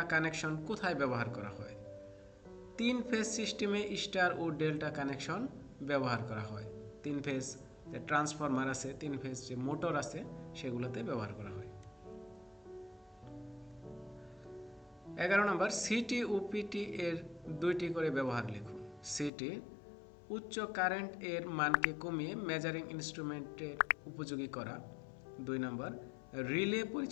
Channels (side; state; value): right; drops out; at 19.3 s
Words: কানেকশন কোথায় ব্যবহার করা হয়? 3 ফেজ সিস্টেমে স্টার ও ডেল্টা কানেকশন ব্যবহার করা হয়। 3 ফেজ যে ট্রান্সফরমার আছে, 3 ফেজ যে মোটর আছে, সেগুলোতে ব্যবহার করা হয়। 11 নম্বর, সিটি ও পিটি এর 2টি করে ব্যবহার লিখুন। সিটি, উচ্চ কারেন্ট এর মানকে কমিয়ে মেজারিং ইনস্ট্রুমেন্টের উপযোগী করা। 2 নম্বর, রিলে